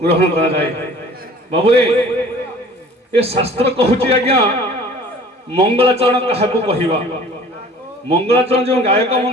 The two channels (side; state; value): both; normal; correlation 0.48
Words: ग्रहण करा जाए। बाबुरे ये शास्त्र कहूची आज्ञा मंगलाचरण क्या कहवा मंगलाचरण जो गायक